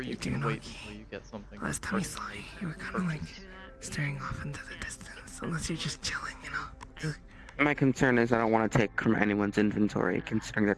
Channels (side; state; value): both; identical; correlation 1.00